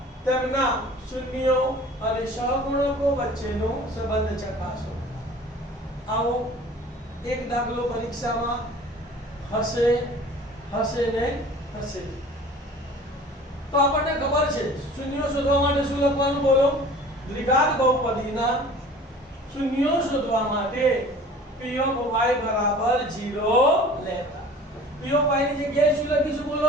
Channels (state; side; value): normal; both; correlation 0.45